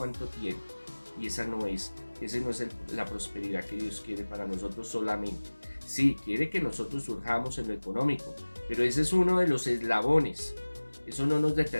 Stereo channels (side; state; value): both; inverted; correlation -1.00